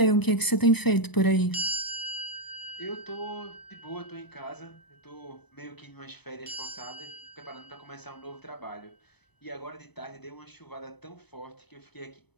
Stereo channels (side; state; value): right; late; 0.99 ms